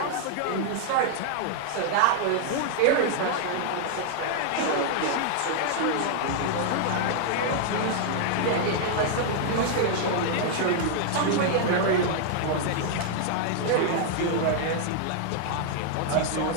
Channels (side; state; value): both; different; correlation -0.01